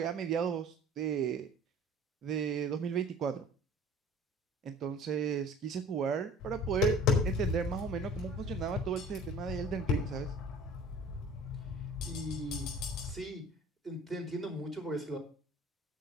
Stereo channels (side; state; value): both; normal; correlation 0.45